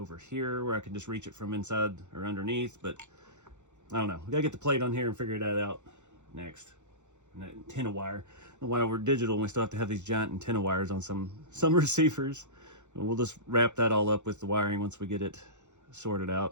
here where I can just reach it from inside or underneath, but I don't know. We gotta get the plate on here and figure that out next. And that antenna wire. While we're digital, we still have to have these giant antenna wires on some receivers. We'll just wrap that all up with the wiring once we get it sorted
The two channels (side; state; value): left; late; 0.84 ms